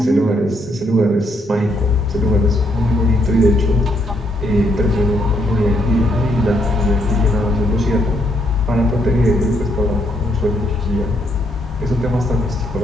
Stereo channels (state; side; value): normal; both; correlation 0.74